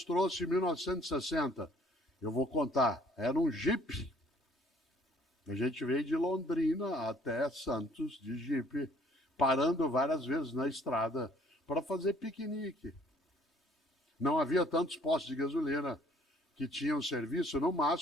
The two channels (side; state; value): both; normal; correlation 0.59